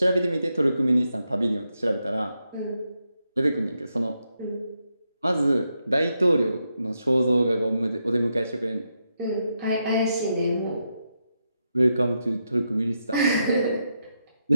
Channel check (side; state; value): both; inverted; correlation -0.84